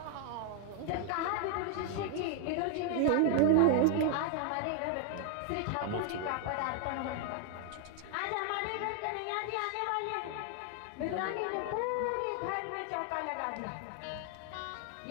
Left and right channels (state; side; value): different; both; correlation 0.00